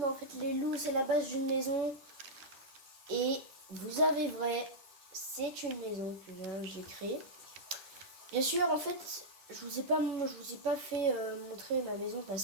en fait les loups c'est la base d'une maison. Et vous avez vrai, c'est une maison que j'ai créée. Bien sûr, en fait, je vous ai pas fait montrer ma maison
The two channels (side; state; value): left; late; 11 ms